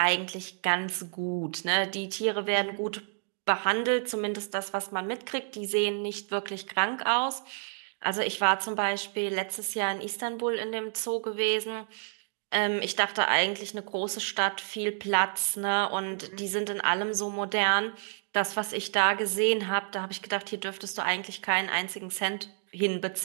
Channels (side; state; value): left; silent; 58 dB below the other